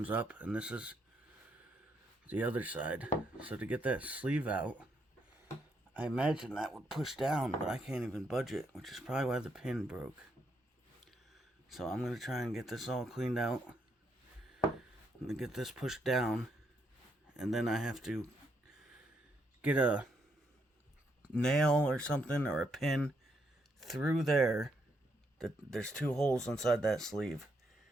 up. And this is the other side. So to get that sleeve out, I imagine that would push down, but I can't even budge it, which is probably why the pin broke. So I'm going to try and get this all cleaned out. I'm going to get this pushed down, and then I have to get a nail or something, or a pin through there. There's 2 holes inside that sleeve.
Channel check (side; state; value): both; normal; correlation 0.76